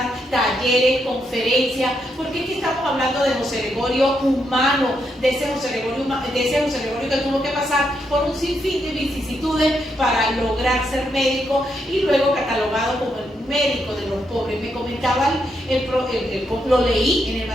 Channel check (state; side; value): normal; both; correlation 0.80